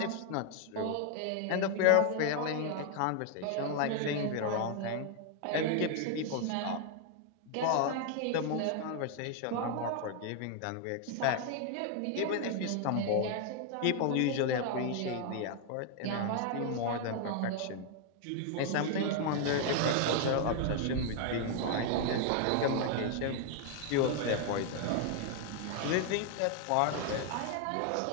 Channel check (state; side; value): different; both; correlation 0.00